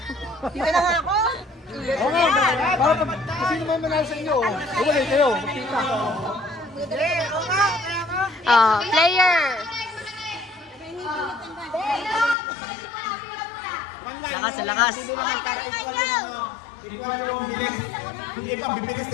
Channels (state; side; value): drops out; right; at 12.4 s